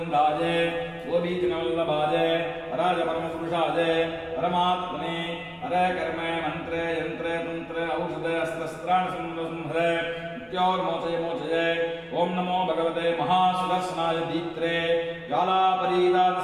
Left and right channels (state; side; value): identical; both; correlation 1.00